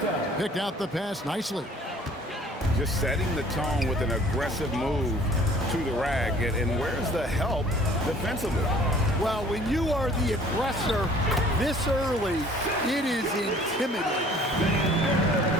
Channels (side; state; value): both; normal; correlation 0.53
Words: Picked out the pass nicely. Just setting the tone with an aggressive move to the rack. And where's the help defensively? Well, when you are the aggressor this early, it is intimidating.